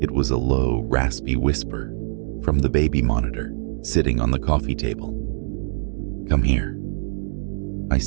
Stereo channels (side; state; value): left; silent; digital silence